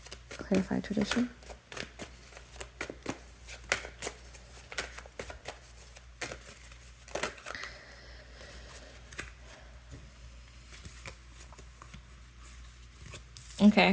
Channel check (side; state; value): both; identical; correlation 1.00